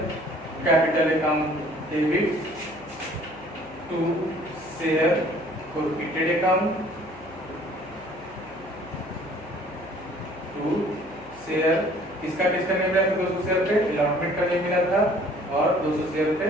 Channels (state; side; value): noise; left; hum, 20 dB below the sound